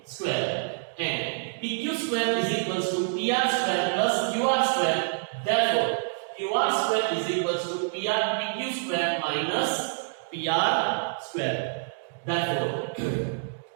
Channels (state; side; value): silent; left; digital silence